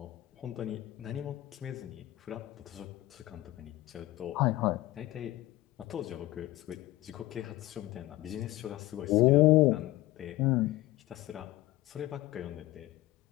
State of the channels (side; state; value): right; quieter; 17.2 dB